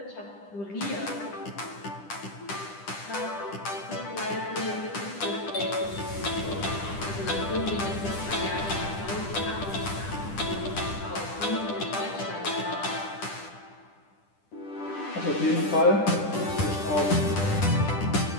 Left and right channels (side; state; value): right; late; 10 ms